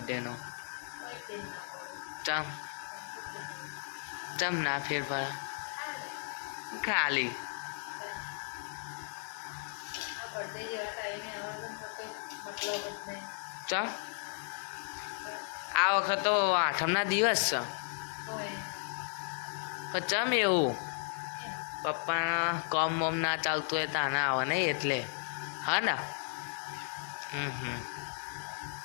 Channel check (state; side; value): silent; right; 54 dB below the other